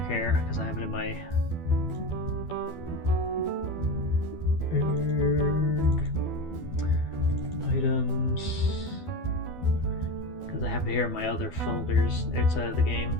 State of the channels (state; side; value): late; right; 12 ms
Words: here because I have it in my items. Because I have it here in my other folders outside of the game.